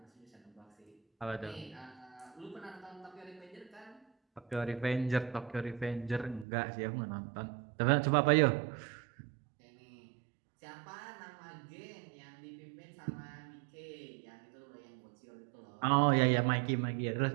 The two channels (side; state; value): left; drops out; at 6.5 s